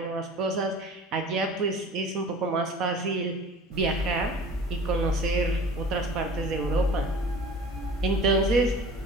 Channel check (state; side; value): normal; both; correlation 0.43